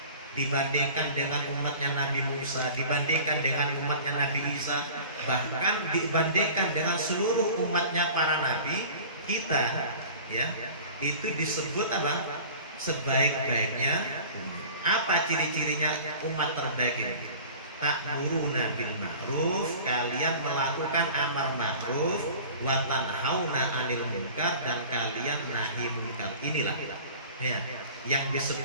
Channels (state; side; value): inverted; both; correlation -0.41